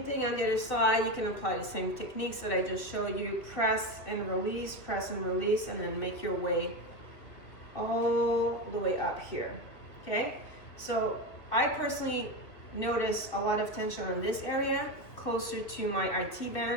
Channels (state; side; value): late; right; 2.8 ms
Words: thing on the other side. You can apply the same techniques that I just showed you. Press and release, and then make your way all the way up here, okay? So I personally notice a lot of tension on this area, closer to my IT